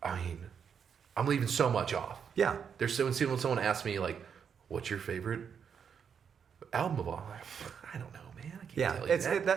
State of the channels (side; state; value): left; quieter; 7.2 dB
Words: I'm leaving so much off. Yeah. When someone asks me, like, what's your favorite album of all? I'm like, I don't know, man. I can't tell you